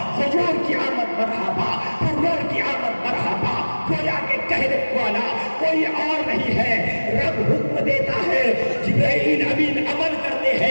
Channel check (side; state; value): both; inverted; correlation -1.00